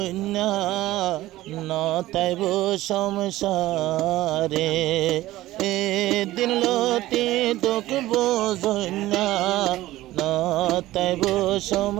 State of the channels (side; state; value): left; quieter; 16.2 dB